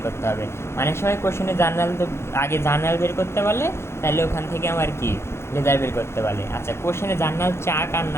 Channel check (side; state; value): right; late; 0.12 ms